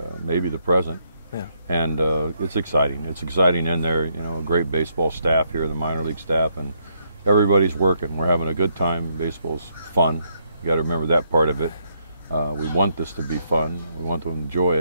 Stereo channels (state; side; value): inverted; both; correlation -0.75